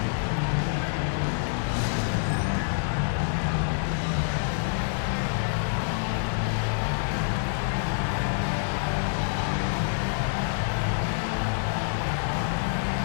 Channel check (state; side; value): silent; right; digital silence